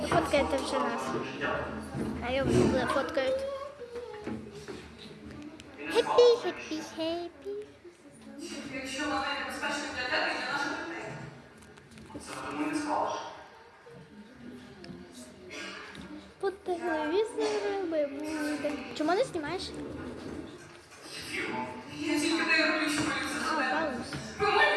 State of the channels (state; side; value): identical; both; correlation 1.00